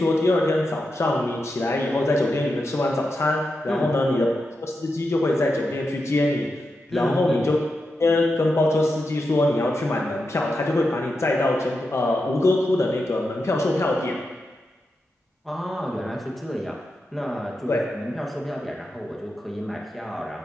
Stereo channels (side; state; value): both; normal; correlation 0.88